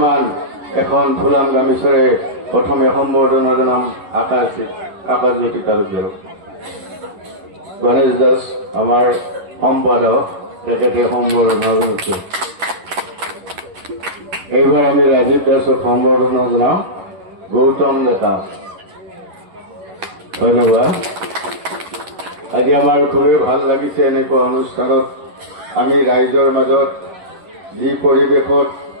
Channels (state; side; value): late; left; 11 ms